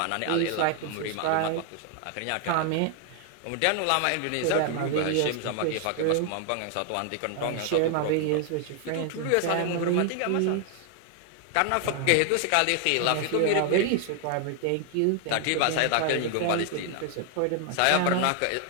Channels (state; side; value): different; both; correlation 0.00